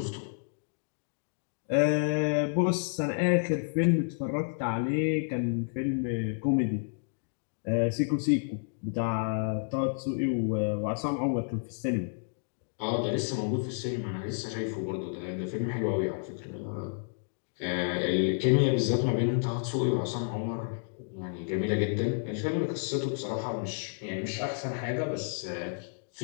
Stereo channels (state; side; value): silent; right; digital silence